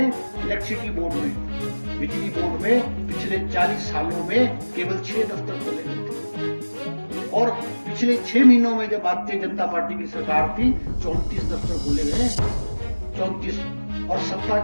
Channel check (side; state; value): both; inverted; correlation -1.00